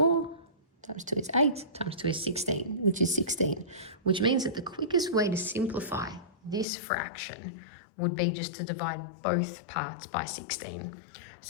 times 2 is 8, times 2 is 16, which is 16, which means that the quickest way to simplify this fraction would be just to divide both parts by 16.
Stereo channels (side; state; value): right; drops out; at 6.7 s